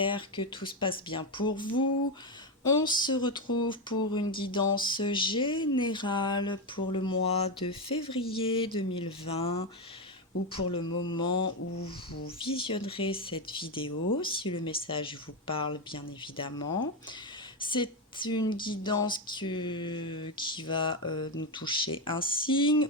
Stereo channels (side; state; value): both; normal; correlation 0.09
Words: que tout se passe bien pour vous. On se retrouve pour une guidance générale pour le mois de février 2020 ou pour le moment où vous visionnerez cette vidéo, si le message vous parle bien évidemment. C'est une guidance qui va nous toucher un signe